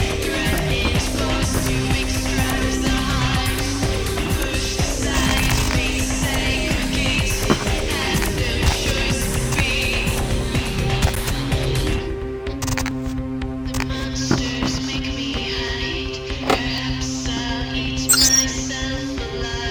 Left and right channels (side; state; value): both; identical; correlation 1.00